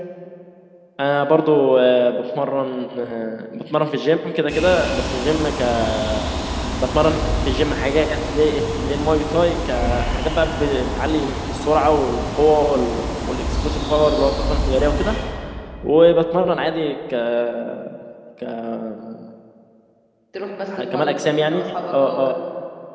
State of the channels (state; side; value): identical; both; correlation 1.00